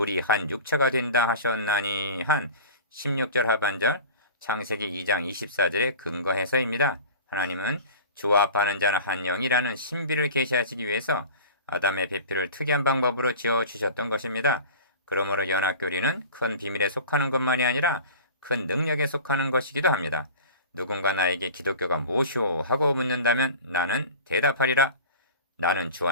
한 육체가 된다 하셨나니 한 16절 하반절 창세기 2장 24절에 근거해서입니다. 하나님은 주와 합하는 자는 한 영이라는 신비를 계시하시기 위해서 아담의 배필을 특이한 방법으로 지어주셨던 것입니다. 그러므로 연합교리는 큰 비밀에 속하는 것만이 아니라 큰 능력에 속하는 것이기도 합니다. 누군가 나에게 기독교가 무엇이오 하고 묻는다면 나는 대답하리라. 나는 주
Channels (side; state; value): both; inverted; correlation -0.38